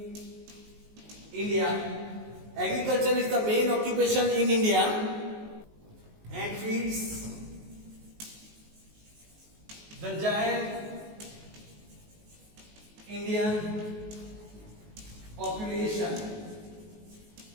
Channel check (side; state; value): left; late; 19 ms